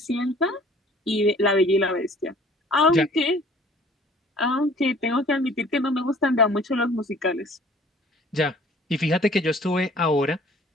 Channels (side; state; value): both; normal; correlation 0.53